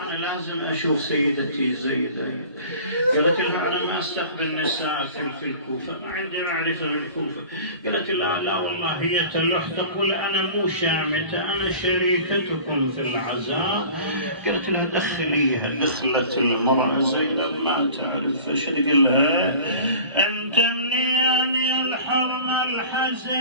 لازم اشوف سيدتي زينب. قالت لها: انا ما استقبل نساء في الكوفة، ما عندي معرفة بالكوفة. قالت: لا والله هي تلح تقول انا مو شامتة، انا شريكتكم في العزاء. قالت لها: دخليها. دخلت المرأة زينب ما تعرف فش تقول لها: انت منين الحرم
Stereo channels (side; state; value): both; inverted; correlation -0.42